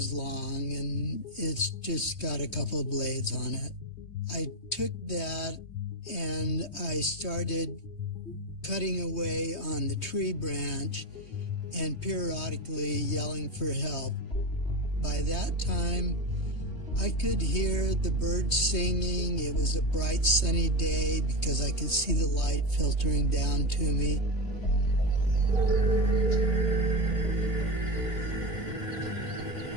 long, and it's just got a couple of blades on it. I took that and I started cutting away on the tree branch and periodically yelling for help. By that time, I could hear the birds singing. It was a bright sunny day because I could see the light filtering down to me.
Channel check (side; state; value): right; late; 3.2 ms